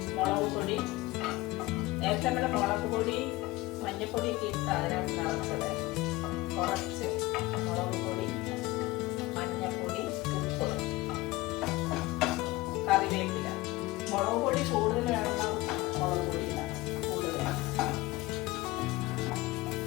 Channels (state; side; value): quieter; right; 19.9 dB